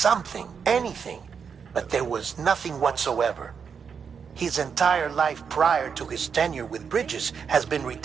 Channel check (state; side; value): quieter; left; 6.5 dB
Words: anything, but there was nothing whatsoever. His entire life prior to his tenure with Bridges has been